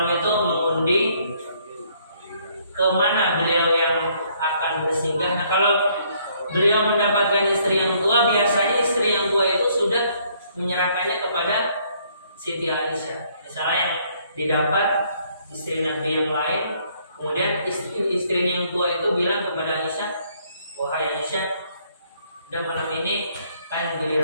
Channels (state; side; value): inverted; both; correlation -0.66